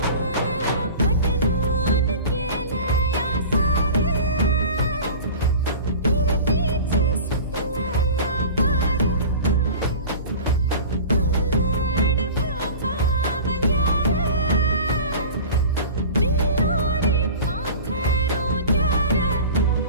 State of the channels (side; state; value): both; inverted; correlation -0.37